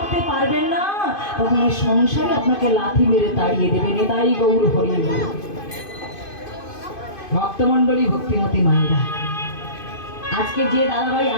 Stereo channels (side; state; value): right; late; 2.5 ms